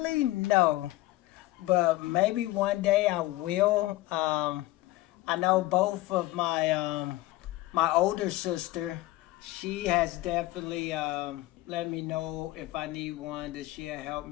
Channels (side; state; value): right; quieter; 18.0 dB